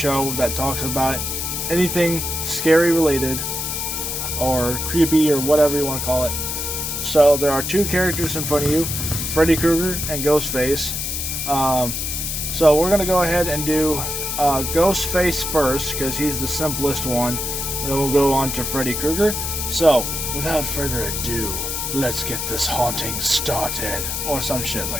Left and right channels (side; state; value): left; noise; hiss, 3 dB below the sound